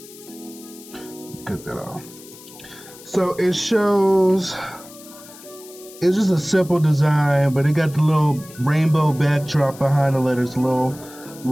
Get that off. So it shows, it's just a simple design, but it got the little rainbow backdrop behind the letters,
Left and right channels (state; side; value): noise; left; hiss, 19 dB below the sound